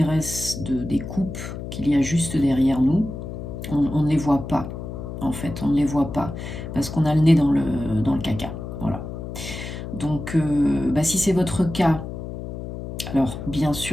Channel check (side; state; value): left; noise; hum, 8 dB below the sound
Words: des coupes qu'il y a juste derrière nous. On ne les voit pas, en fait. On ne les voit pas. Parce qu'on a le nez dans le caca. Voilà. Donc, si c'est votre cas, alors bien